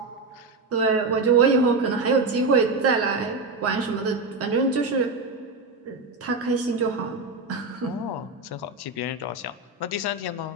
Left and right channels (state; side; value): quieter; left; 3.6 dB